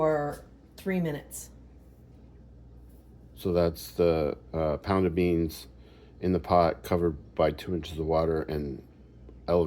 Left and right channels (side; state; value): both; identical; correlation 1.00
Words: 3 minutes. So that's the pound of beans in the pot covered by 2 inches of water and